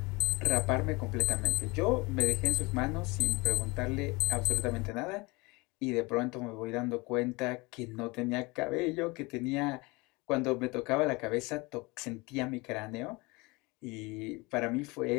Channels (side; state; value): right; quieter; 25.1 dB